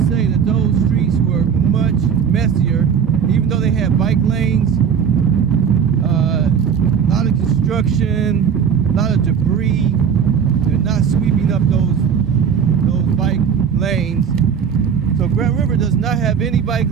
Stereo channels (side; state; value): left; quieter; 7.3 dB